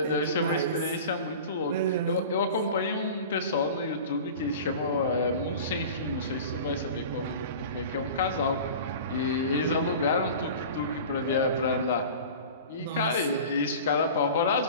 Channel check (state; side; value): inverted; both; correlation -0.37